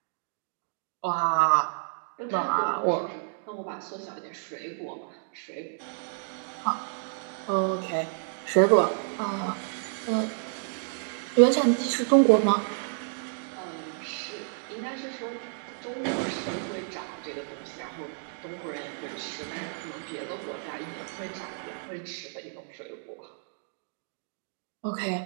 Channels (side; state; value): left; silent; digital silence